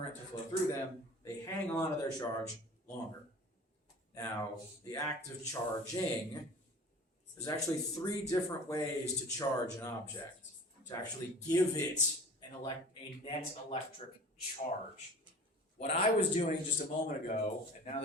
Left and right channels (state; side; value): normal; both; correlation 0.42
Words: to flow through them. They hang on to their charge longer. Now, the act of charging, there's actually 3 different ways to charge an object, to actually give it a net electric charge. What I was doing just a moment ago, and now